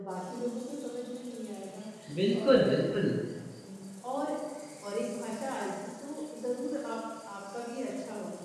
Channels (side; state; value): both; identical; correlation 1.00